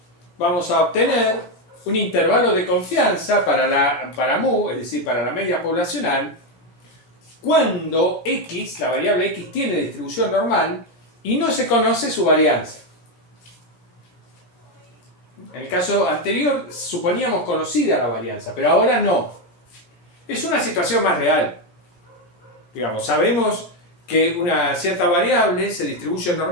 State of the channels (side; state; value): right; late; 17 ms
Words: vamos a obtener un intervalo de confianza para mu, es decir, para la media poblacional, cuando x, la variable x, tiene distribución normal y no se conoce su varianza. En el caso anterior suponíamos conocida la varianza, pero ahora no. Es una situación más real. Digamos, sabemos que una cierta variable se distribuye